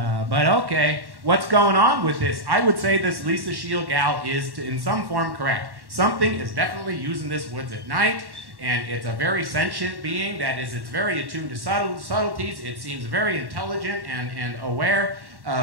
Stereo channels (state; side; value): late; left; 1.1 ms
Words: but okay, what's going on with this? I would say this Lisa Scheel gal is, in some form, correct. Something is definitely using this woods at night, and it's a very sentient being, that is, it's very attuned to subtleties, it seems very intelligent and aware